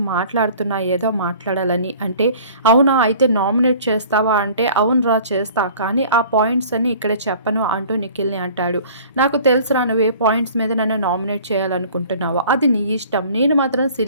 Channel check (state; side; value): inverted; both; correlation -0.48